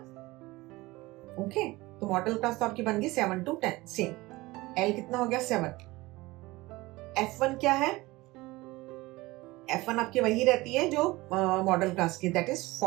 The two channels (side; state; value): left; quieter; 20.6 dB